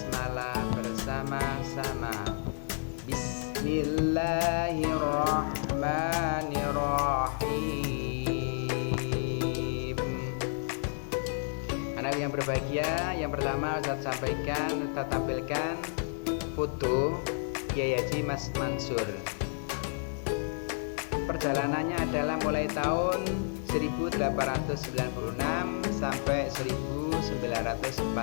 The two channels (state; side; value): silent; right; digital silence